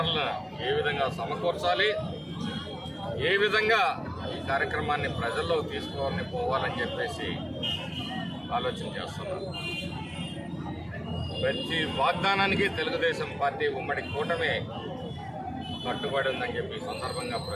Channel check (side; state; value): both; identical; correlation 1.00